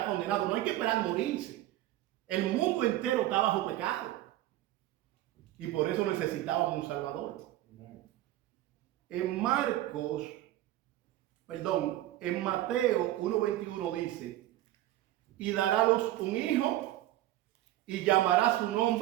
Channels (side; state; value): left; quieter; 14.7 dB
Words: condenado, no hay que esperar morirse. El mundo entero está bajo pecado. Y por eso necesitábamos un Salvador. En Mateo 1:21 dice: y dará a luz un hijo y llamará su